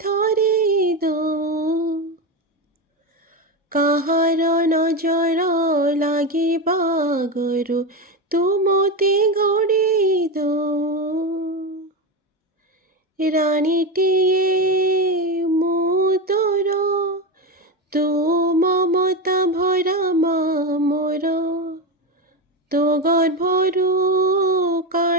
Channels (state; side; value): normal; both; correlation 0.15